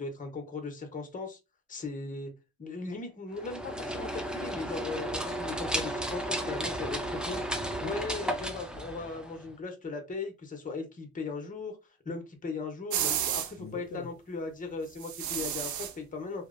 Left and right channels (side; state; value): both; normal; correlation 0.37